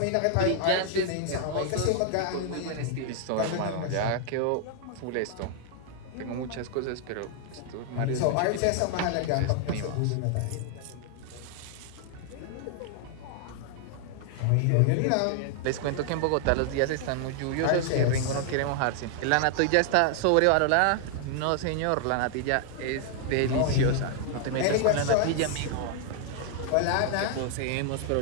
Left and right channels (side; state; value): both; different; correlation 0.00